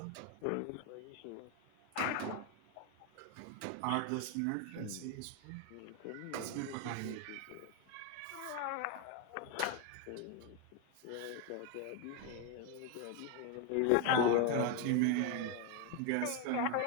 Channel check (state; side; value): different; both; correlation 0.01